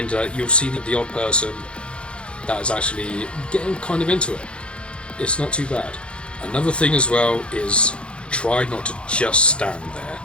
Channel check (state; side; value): late; right; 0.057 ms